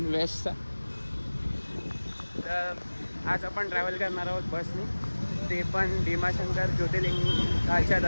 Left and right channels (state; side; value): inverted; both; correlation -1.00